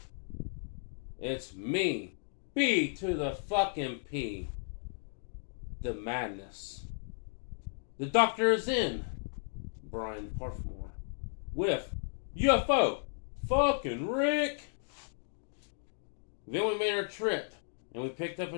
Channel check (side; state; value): right; silent; digital silence